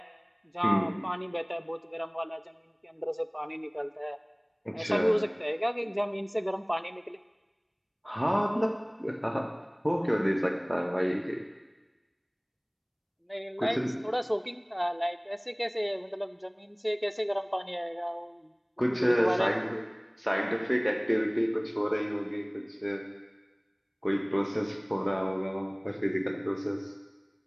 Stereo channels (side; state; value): both; identical; correlation 1.00